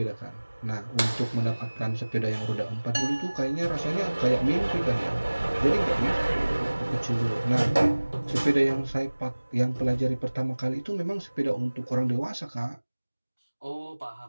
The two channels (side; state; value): both; inverted; correlation -1.00